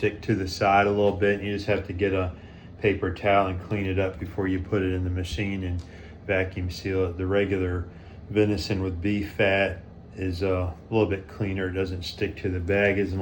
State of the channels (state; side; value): identical; both; correlation 1.00